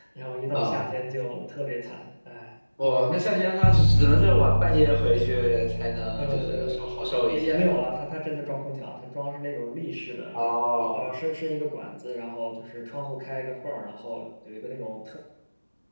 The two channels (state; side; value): inverted; both; correlation -1.00